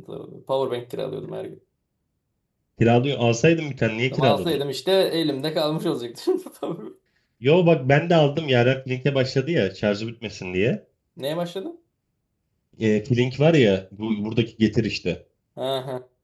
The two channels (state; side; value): identical; both; correlation 1.00